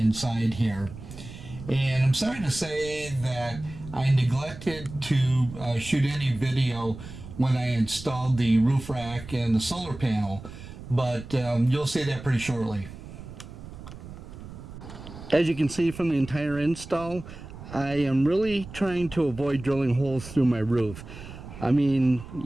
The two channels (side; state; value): right; noise; rumble, 14 dB below the sound